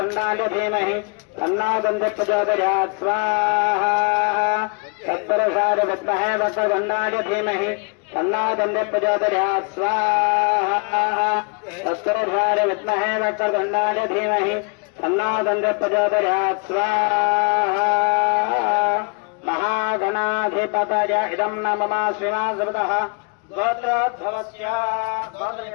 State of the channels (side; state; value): right; quieter; 34.2 dB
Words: धीमहि तन्नो दन्ति प्रचोदयात् स्वाहा तत्पुरुषाय विद्महे वक्रतुण्डाय धीमहि तन्नो दन्ति प्रचोदयात् स्वाहा तत्पुरुषाय विद्महे वक्रतुण्डाय धीमहि तन्नो दन्ति प्रचोदयात् स्वाहा महागणाधिपतय इदं न मम श्रीनाथः गोत्रोद्भवस्य